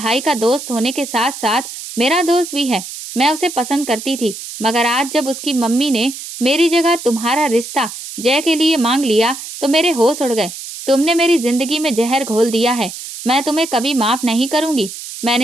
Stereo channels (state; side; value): noise; right; hiss, 11 dB below the sound